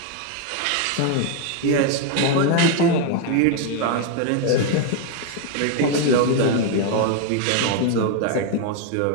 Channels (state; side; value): different; both; correlation 0.01